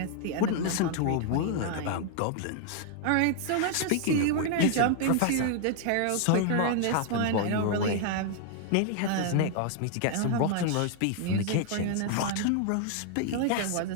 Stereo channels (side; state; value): both; different; correlation 0.00